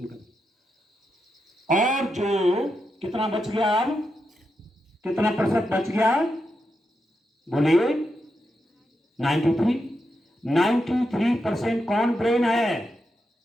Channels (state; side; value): normal; both; correlation 0.86